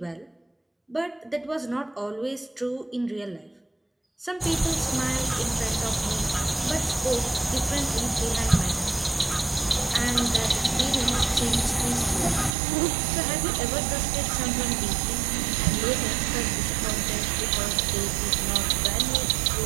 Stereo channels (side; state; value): left; drops out; at 12.5 s